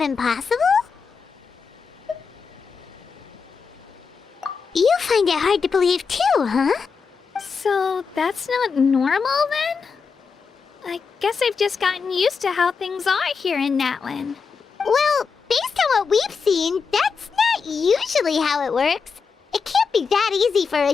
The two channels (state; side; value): quieter; right; 5.5 dB